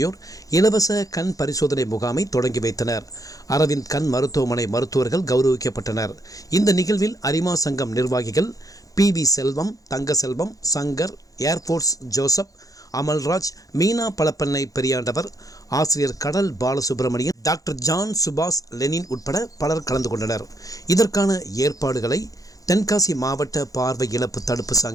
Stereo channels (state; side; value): late; right; 0.17 ms